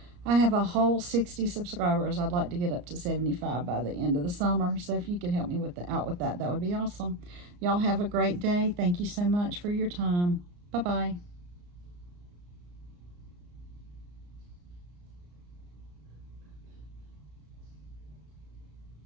I have a whole 60 subscribers. I'd like to get up to 75 by the end of the summer. So if you could help me out with that, that would be awesome. Y'all have a great day. Thank you so much for your time. Bye-bye.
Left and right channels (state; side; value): late; left; 34 ms